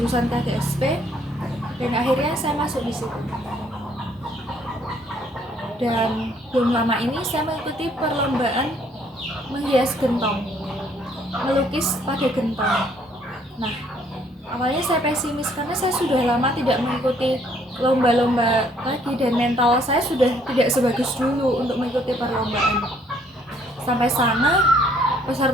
KGSP dan akhirnya saya masuk di situ. Dan belum lama ini saya mengikuti perlombaan menghias gentong, melukis pada gentong. Nah, awalnya saya pesimis karena saya sudah lama tidak mengikuti lomba-lomba lagi dan mental saya sudah tidak sebagus dulu untuk mengikuti perlombaan. Sampai sana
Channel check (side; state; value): both; normal; correlation 0.64